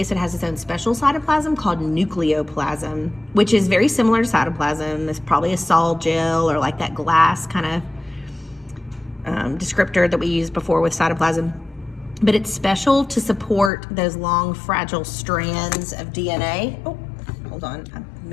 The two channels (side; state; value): right; drops out; at 13.7 s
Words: it has its own special cytoplasm called nucleoplasm, which is very similar to cytoplasm. It's probably a sol gel or like that glass kind of descriptor that we used before with cytoplasm. But it's special to support those long, fragile strands of DNA. Oh, hold on, I